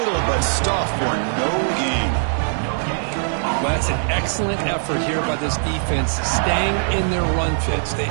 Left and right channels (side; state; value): left; silent; digital silence